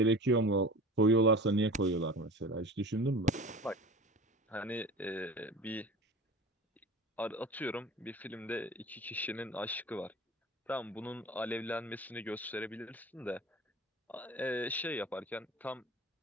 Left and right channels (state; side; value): normal; both; correlation 0.38